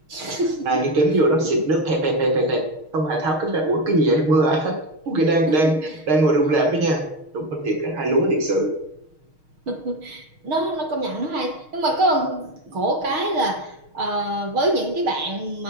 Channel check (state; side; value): late; left; 6.4 ms